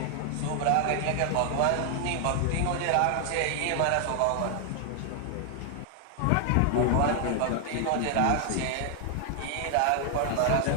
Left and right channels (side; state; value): both; different; correlation 0.00